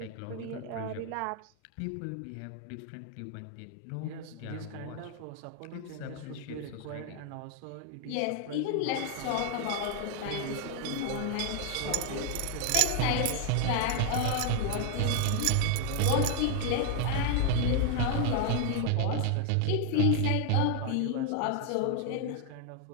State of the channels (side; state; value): both; different; correlation 0.00